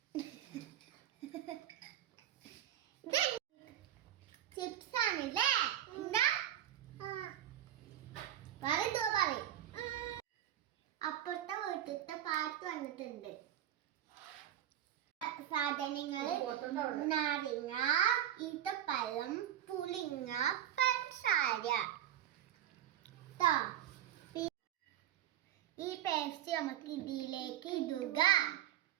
ചിപ്സ് ആണല്ലേ? എന്താ പറയും? അപ്പുറത്തെ വീട്ടിലത്തെ പാട്ട് വന്നിട്ടുണ്ട്. സാധനങ്ങള് നാരങ്ങ, ഈത്തപ്പഴം, പുളിങ്ങ, പഞ്ചസാര. ഈ പേസ്റ്റ് നമുക്ക് ഇതിലേക്ക് ഇടുക.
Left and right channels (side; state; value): left; quieter; 11.6 dB